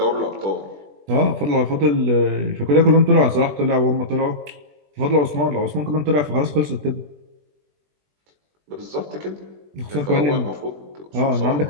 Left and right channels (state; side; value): late; left; 20 ms